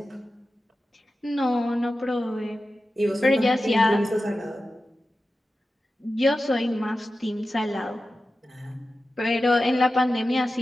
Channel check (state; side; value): normal; both; correlation 0.93